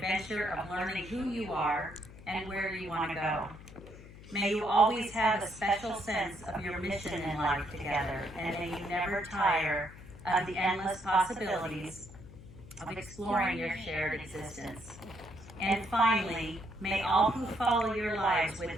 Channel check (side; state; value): left; noise; hum, 17 dB below the sound